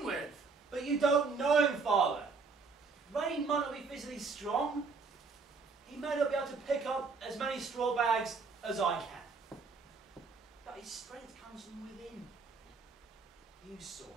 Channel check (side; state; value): left; quieter; 4.6 dB